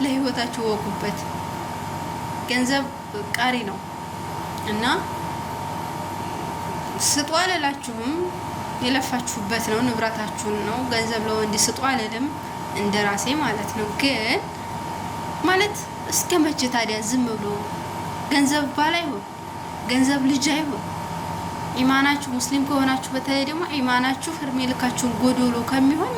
ለህይወታችሁ ወቁበት። ገንዘብ ቃሪ ነው እና ስጡ አልላችሁም፣ የለፋችሁበት ነው፣ ንብረታችሁን ነው። ገንዘብ ለወንድ ስጡ አልልም፣ እንደራሴ ማለት ነው። ግን ማለት እስከ መቼ ታዲያ ዝም ብሎ ገንዘብ ባል አይሆን፣ ገንዘብ ልጅ አይሆን። ኢማናችሁ ሙስሊም ከሆናችሁ በተለይ ደግሞ ኢማናችሁ እድሜ ልካችሁን ጎዶሎ ከሚሆን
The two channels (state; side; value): identical; both; correlation 1.00